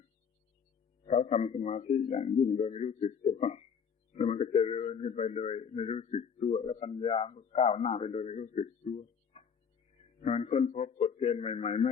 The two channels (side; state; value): right; quieter; 6.7 dB